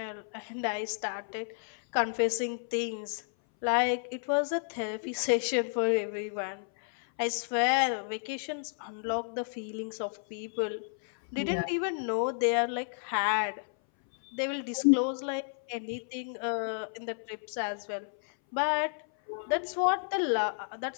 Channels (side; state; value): right; silent; 57 dB below the other